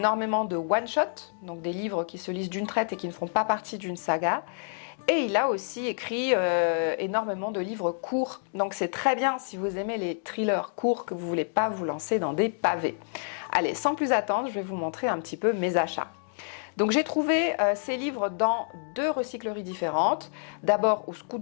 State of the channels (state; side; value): silent; right; digital silence